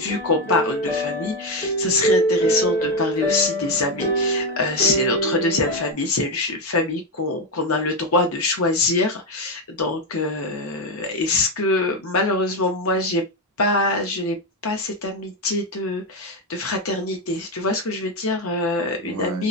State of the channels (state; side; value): normal; both; correlation 0.09